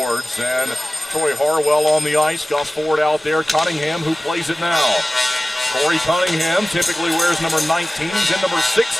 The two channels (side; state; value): both; normal; correlation 0.97